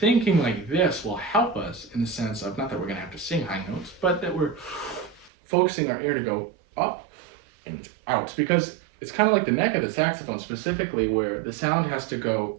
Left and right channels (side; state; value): left; drops out; at 5.3 s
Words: like this will help us in the sense of, not that we're going to have to sing high notes, but that we're focusing our air to go up and out, because it's kind of like the neck of the saxophone specifically, where the sound has to go